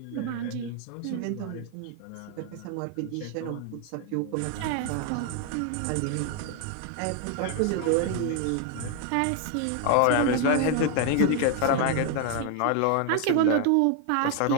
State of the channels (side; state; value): both; different; correlation 0.00